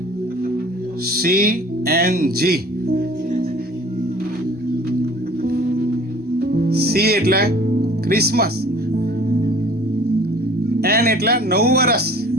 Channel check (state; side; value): normal; both; correlation 0.48